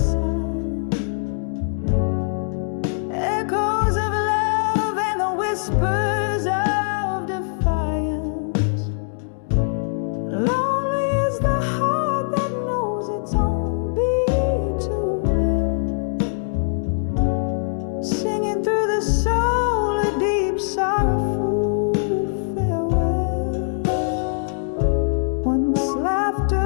Echoes of love and the whispers of defiance. Lonely is the heart that knows its own beat too well. Singing through the soul a deep sorrowful farewell. Once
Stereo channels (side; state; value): right; silent; digital silence